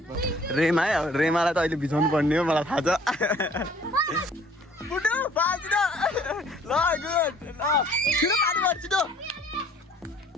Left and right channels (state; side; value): normal; both; correlation 0.56